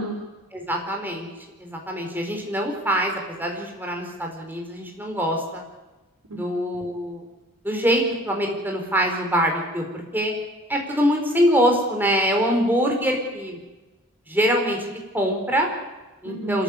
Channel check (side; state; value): both; normal; correlation 0.50